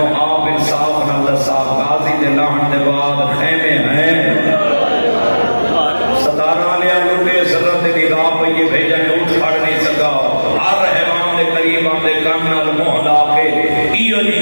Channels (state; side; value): inverted; both; correlation -1.00